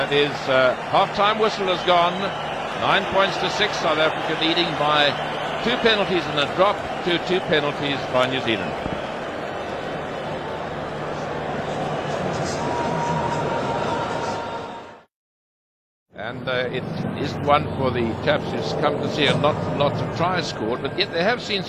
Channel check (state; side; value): identical; both; correlation 1.00